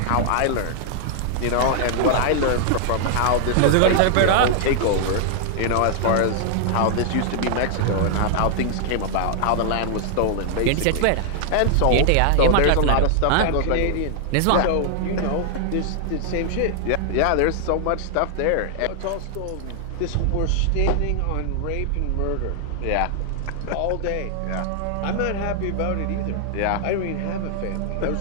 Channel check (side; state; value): both; different; correlation 0.00